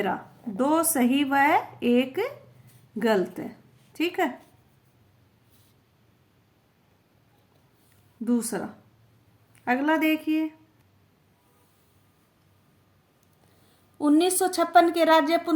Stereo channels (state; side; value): identical; both; correlation 1.00